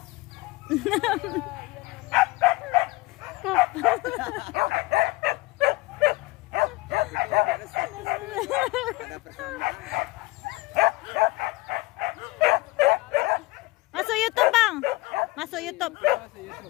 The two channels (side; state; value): right; quieter; 21.7 dB